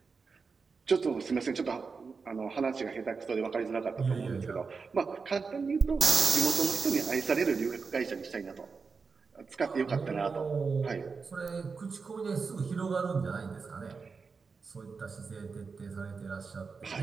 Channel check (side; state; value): left; quieter; 4.9 dB